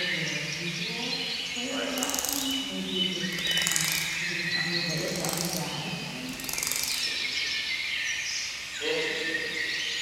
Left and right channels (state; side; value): noise; right; hum, 26 dB below the sound